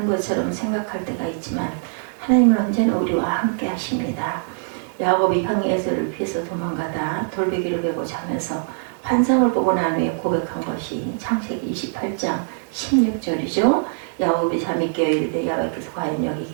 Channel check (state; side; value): silent; left; digital silence